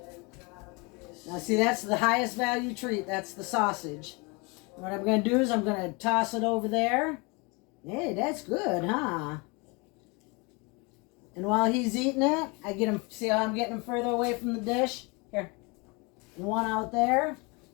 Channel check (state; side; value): quieter; right; 28.7 dB